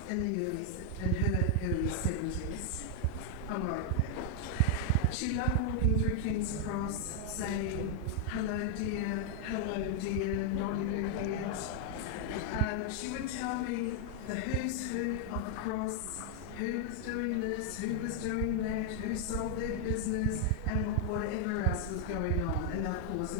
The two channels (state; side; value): different; both; correlation 0.00